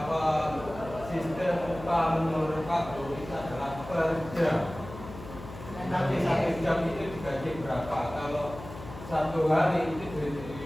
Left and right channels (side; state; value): left; noise; hum, 14 dB below the sound